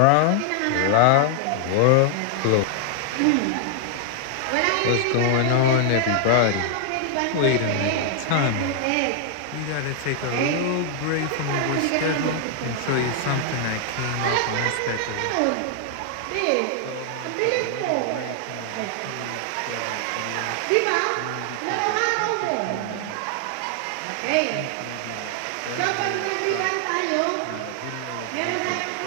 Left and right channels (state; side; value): different; both; correlation 0.00